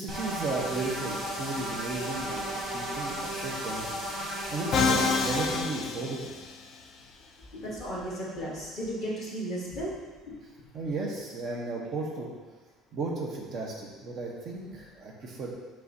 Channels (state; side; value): normal; both; correlation 0.54